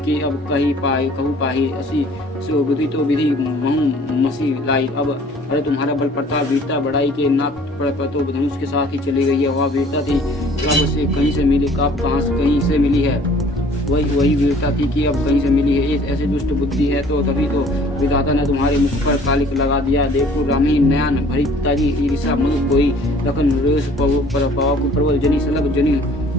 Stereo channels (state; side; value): normal; both; correlation 0.53